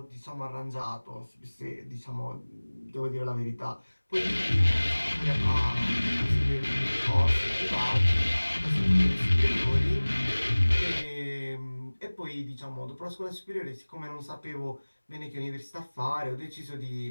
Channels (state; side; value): inverted; both; correlation -1.00